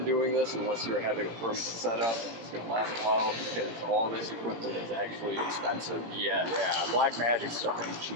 doing this unless you're having a permanent setup and it's going to last a while because all this equipment is actually expensive. Yes. Yeah, Black Magic stuff ain't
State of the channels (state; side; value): late; left; 17 ms